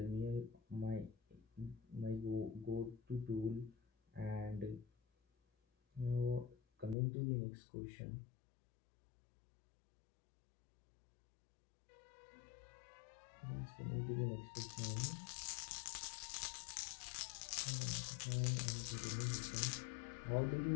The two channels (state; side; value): drops out; right; at 7.0 s